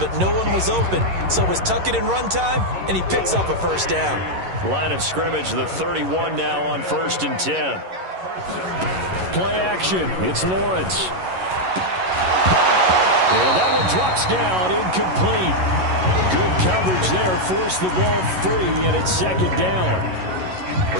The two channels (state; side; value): late; left; 11 ms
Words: no one was open. So it was tuck it in run time, and he picks up a first down. Line of scrimmage, the 31 now on 1st and 10. Play action. It's Lawrence. And that one drops down, incomplete. Good coverage there, forced the ball free, and it's second down. Well,